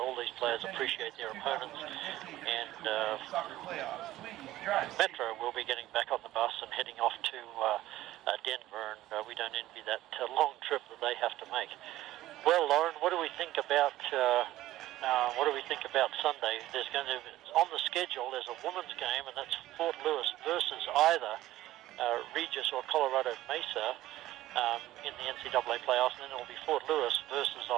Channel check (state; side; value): quieter; left; 15.2 dB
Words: these players appreciate their opponents, and Metro will be getting back on the bus and heading off to Denver, and we don't envy that long trip that they have to make. Well, Lauren, what do we think about Sunday? There's going to, on the schedule, there's a women's game, and that's Fort Lewis versus either Regis or Colorado Mesa in the NCAA playoffs, and then it'll be Fort Lewis versus